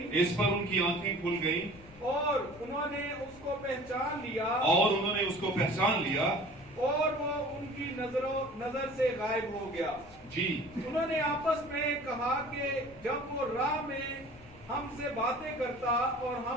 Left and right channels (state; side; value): noise; left; rumble, 22 dB below the sound